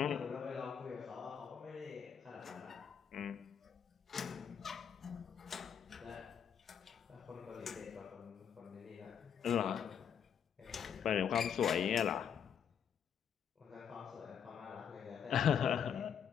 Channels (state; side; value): quieter; right; 8.1 dB